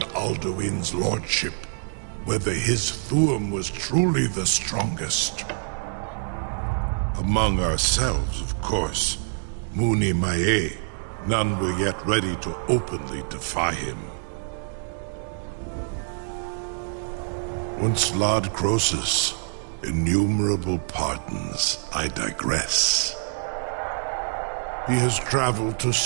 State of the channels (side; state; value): left; silent; digital silence